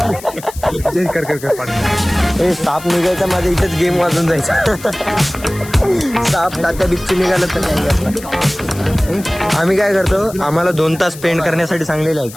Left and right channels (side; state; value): left; noise; hiss, 16 dB below the sound